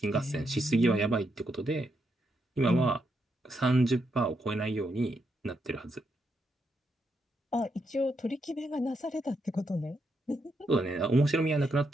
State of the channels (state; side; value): normal; both; correlation 0.80